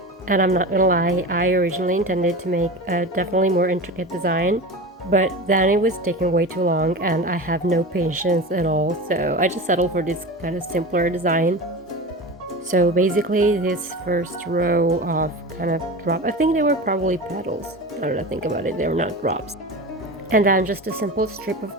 And I'm not gonna lie, I originally intended to make a definitely more intricate design, but then it was taking way too long and I have no patience at all, so I just settled for this kind of simpler design. So basically this first row of kind of drop, I think they were probably petals, now that I think about it, they were not drops. And then just a simple strip of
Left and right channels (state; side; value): normal; both; correlation 0.29